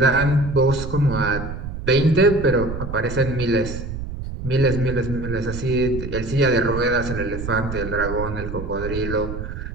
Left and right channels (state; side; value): noise; right; rumble, 7 dB below the sound